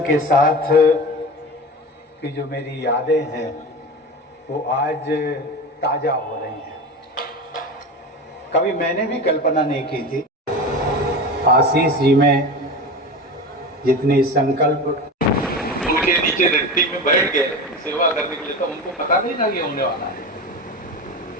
के साथ की जो मेरी यादें हैं वो आज ताजा हो रही हैं। कभी मैंने भी कल्पना नहीं की थी। आशीष जी में जितनी संकल्प उनके नीचे रट्टी में बैठ गए सेवा करने के लिए, तो उनको पता नहीं था ये होने वाला है।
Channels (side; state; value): both; normal; correlation 0.27